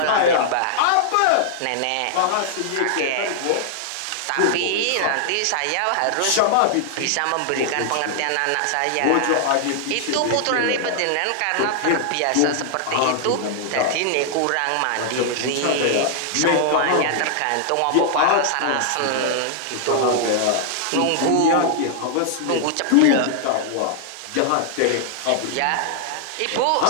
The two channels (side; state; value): both; different; correlation -0.01